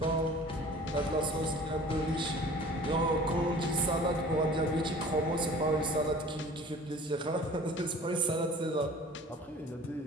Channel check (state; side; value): normal; both; correlation 0.45